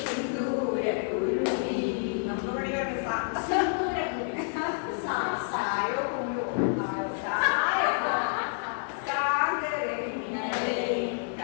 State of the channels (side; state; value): right; silent; 59 dB below the other